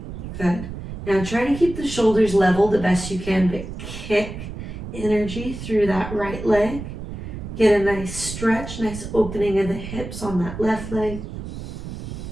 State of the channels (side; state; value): right; noise; rumble, 9 dB below the sound